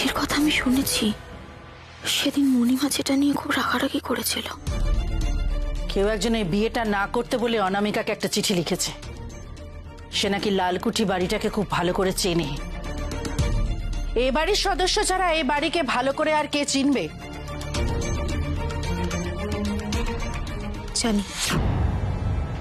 কথা আমি শুনেছি, সেদিন মণিমা যেটা নিয়ে খুব রাগারাগি করেছিল। কেউ একজন এই বিয়েটা না করতে বলে অনামিকাকে একটা চিঠি লিখেছে। সে নাকি লালকুঠি বাড়িটাকে খুব ভালো করে চেনে। এ বাড়ির সদস্য ছাড়া এই বাড়িকে ভালো করে আর কে চিনবে? জানি।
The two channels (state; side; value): identical; both; correlation 1.00